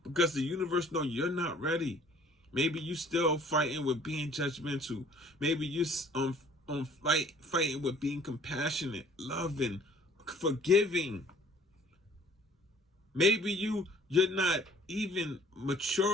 because the universe know you're not ready. Maybe you still fighting with being judgmental. Maybe you fighting with being compassionate, loving, forgiving. Maybe you're not even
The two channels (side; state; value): both; normal; correlation 0.55